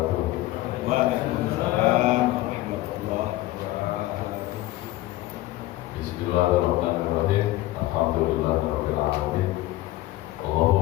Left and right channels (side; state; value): right; quieter; 17.0 dB